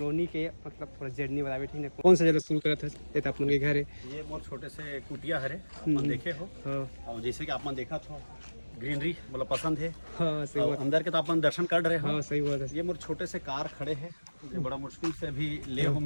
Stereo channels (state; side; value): inverted; both; correlation -1.00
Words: के मतलब थोड़ा जर्नी बतावे, ठीक है। कौन सा जगह शुरू करा था ये तो अपन के घर है, ये मोर छोटे से कुटिया हरे अपन देखे हो। और जैसे कि आपने देखा था ग्रीनरी मतलब पसंद है। हाँ सही बात, अंदर के तो अपन दर्शन कर रहे हो। हाँ सही बात है। ये मोर छोटे से कार खड़े हैं, ये बड़ा मुश्किल से अभी ले हो